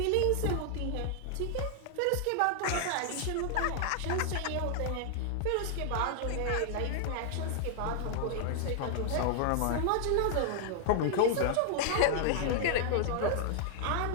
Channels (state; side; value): different; both; correlation 0.00